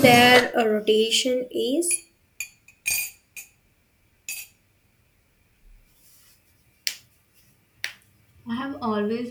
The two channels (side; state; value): both; identical; correlation 1.00